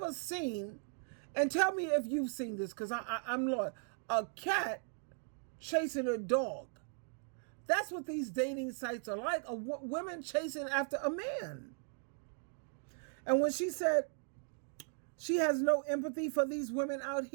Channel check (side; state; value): left; silent; 53 dB below the other